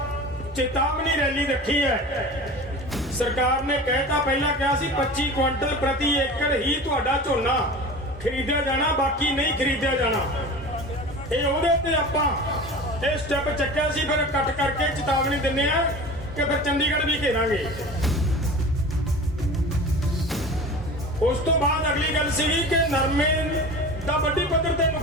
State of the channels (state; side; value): normal; both; correlation 0.35